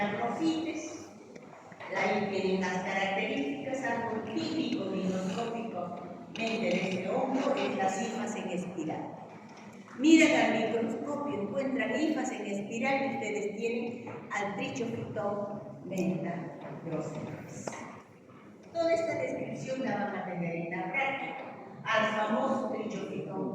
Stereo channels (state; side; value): identical; both; correlation 1.00